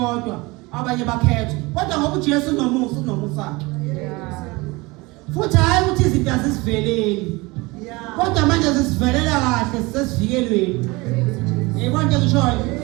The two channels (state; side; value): quieter; left; 23.6 dB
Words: abanye bakhethwe. Kodwa ngoba uJesu unomusa. Futhi hayi ukuthi izinto azisiveleli. Kodwa manje zisivelela kahle sesivikelweni. Yebo nje ngishoyo.